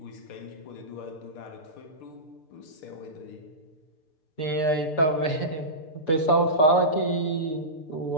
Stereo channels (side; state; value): right; late; 6.7 ms